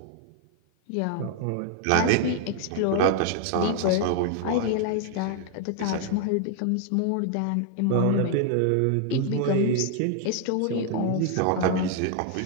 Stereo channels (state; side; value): different; both; correlation 0.00